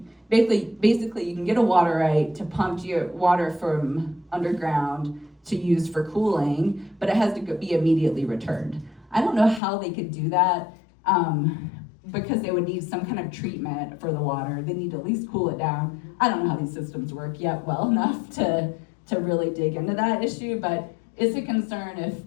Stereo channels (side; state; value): right; drops out; at 9.6 s